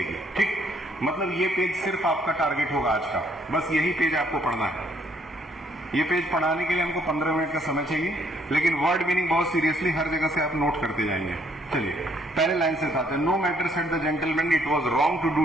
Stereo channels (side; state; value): both; normal; correlation 0.68